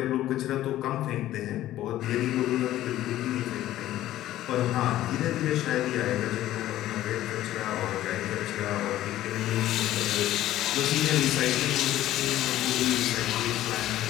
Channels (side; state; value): right; quieter; 14.0 dB